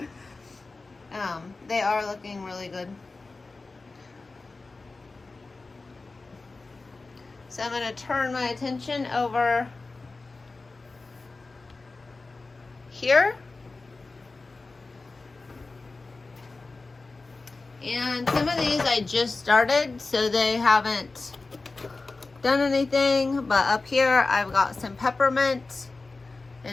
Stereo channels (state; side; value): quieter; right; 3.6 dB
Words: They are looking really good. So I'm going to turn my attention over here. And some of these I just started, so they haven't done anything. But up here I've got some peppermint